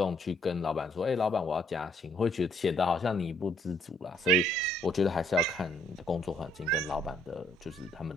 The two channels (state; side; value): normal; both; correlation 0.66